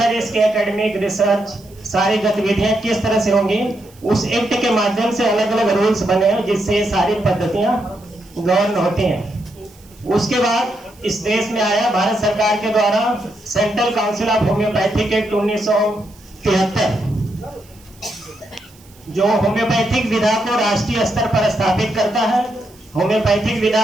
इसके एकेडमिक रिसर्च, सारी गतिविधियां किस तरह से होंगी, उस एक्ट के माध्यम से अलग अलग रूल्स बने हैं जिससे ये सारी पद्धतियां गवर्न होती हैं। उसके बाद इस देश में आया भारत सरकार के द्वारा central council of homeopathic act 1973, जो होम्योपैथिक विधा को राष्ट्रीय स्तर पर स्थापित करता है, होम्योपैथिक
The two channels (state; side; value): noise; right; hiss, 27 dB below the sound